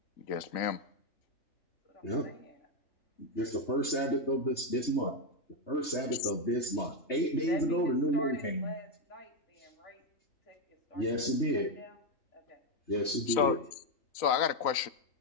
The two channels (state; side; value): late; right; 3.3 ms